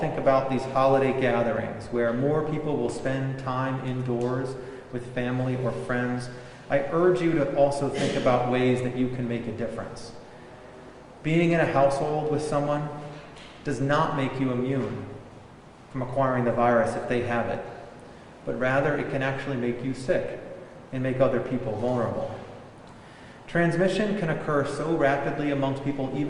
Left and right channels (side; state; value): both; identical; correlation 1.00